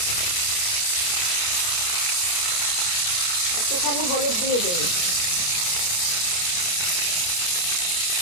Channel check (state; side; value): late; right; 28 ms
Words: একটুখানি হলুদ দিয়ে দেই।